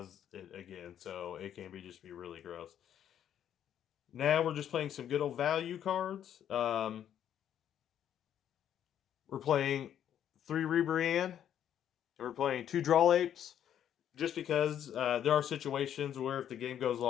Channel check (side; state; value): right; quieter; 10.0 dB